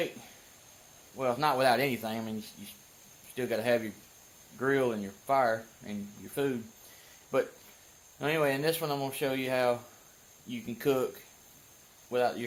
well, not without anything. I mean, you still got to have your grill and your fire and your food. But anyway, in this one I'm going to show you how you can cook without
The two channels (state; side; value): identical; both; correlation 1.00